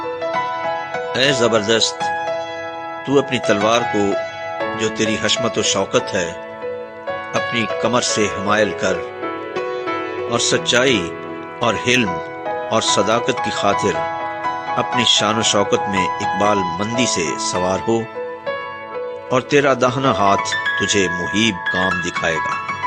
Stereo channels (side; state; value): both; identical; correlation 1.00